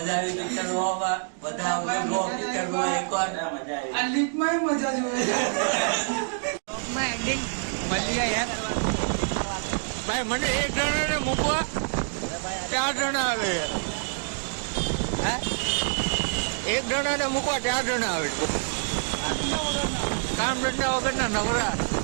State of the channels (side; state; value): left; silent; digital silence